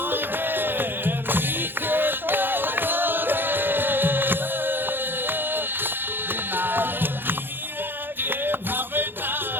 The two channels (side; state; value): left; late; 0.10 ms